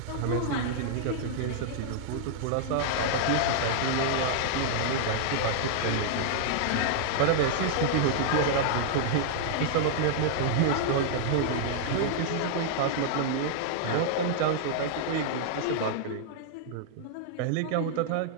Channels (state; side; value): different; both; correlation -0.01